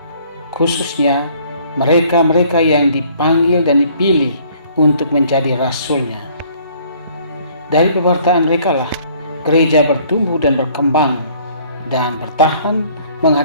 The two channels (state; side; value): inverted; both; correlation -0.58